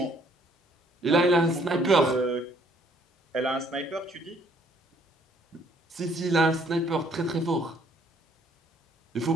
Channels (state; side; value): normal; both; correlation 0.63